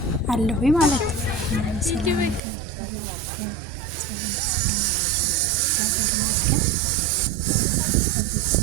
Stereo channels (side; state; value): left; drops out; at 2.4 s